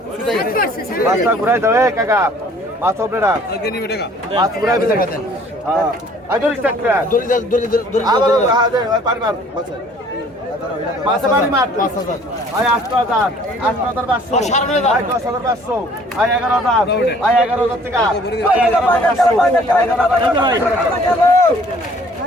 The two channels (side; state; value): both; normal; correlation 0.55